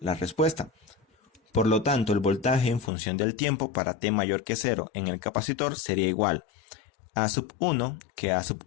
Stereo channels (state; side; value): drops out; right; at 2.9 s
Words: respuesta. Por lo tanto, el voltaje en función del tiempo para T mayor que 0 en el capacitor sería igual a A sub 1, que A sub